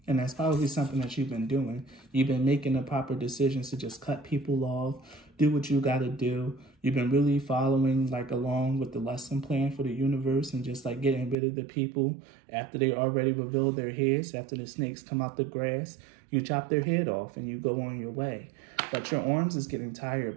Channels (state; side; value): drops out; left; at 11.4 s